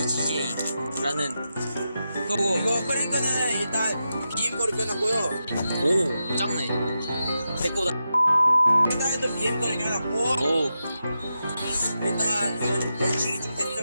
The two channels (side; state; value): both; inverted; correlation -0.88